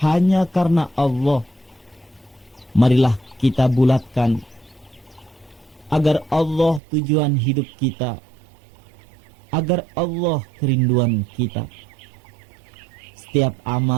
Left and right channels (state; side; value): drops out; left; at 6.8 s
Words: hanya karena Allah. Marilah kita bulatkan agar Allah tujuan hidup kita, agar Allah kerinduan kita. Setiap